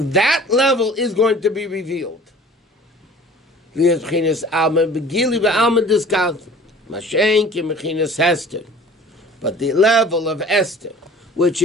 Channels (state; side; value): normal; both; correlation 0.46